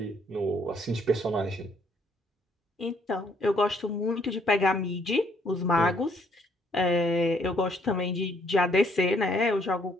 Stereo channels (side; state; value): both; normal; correlation 0.67